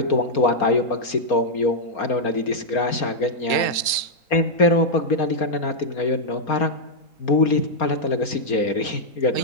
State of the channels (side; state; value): right; late; 3.8 ms